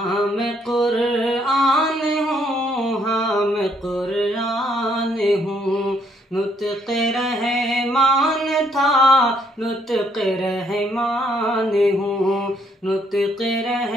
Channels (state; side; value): normal; both; correlation 0.69